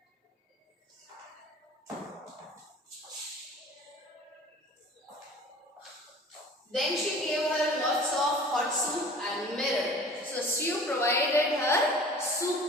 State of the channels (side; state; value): both; normal; correlation 0.44